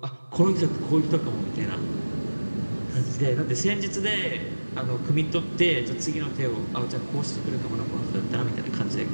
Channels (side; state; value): both; inverted; correlation -1.00